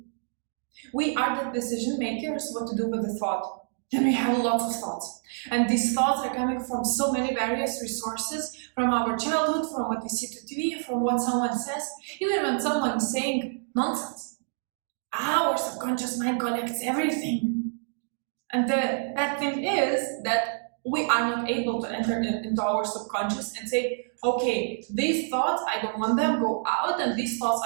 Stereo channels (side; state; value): left; silent; digital silence